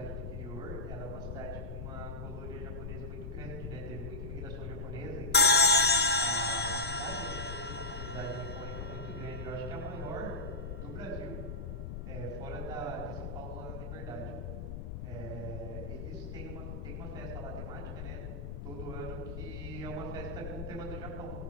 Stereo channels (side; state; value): left; noise; rumble, 6 dB below the sound